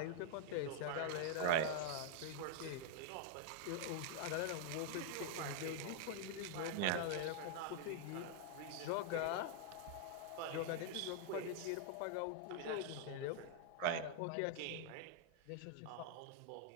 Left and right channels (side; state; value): both; different; correlation -0.01